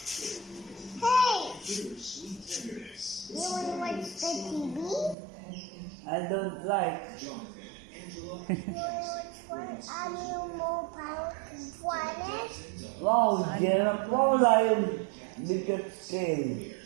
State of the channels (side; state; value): left; drops out; at 5.2 s